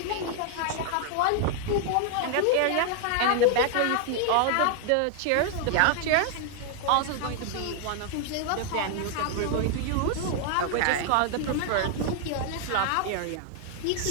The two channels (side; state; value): both; different; correlation 0.00